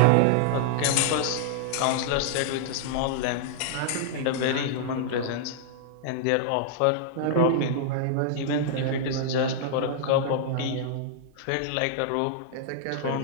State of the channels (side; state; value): both; different; correlation -0.01